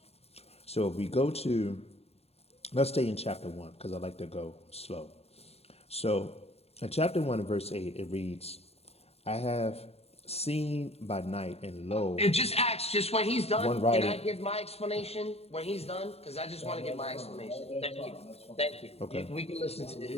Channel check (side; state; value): right; late; 0.30 ms